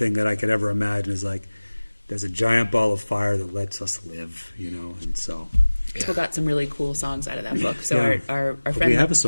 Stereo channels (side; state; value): both; inverted; correlation -1.00